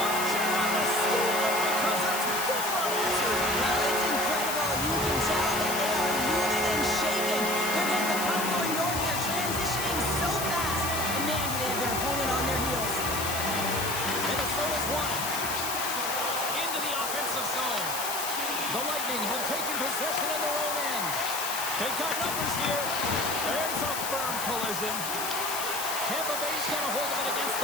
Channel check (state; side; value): noise; left; hiss, 4 dB below the sound